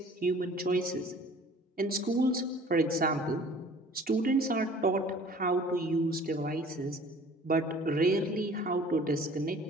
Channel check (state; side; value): normal; both; correlation 0.49